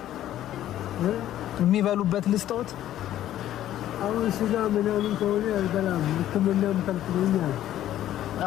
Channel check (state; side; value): quieter; right; 12.5 dB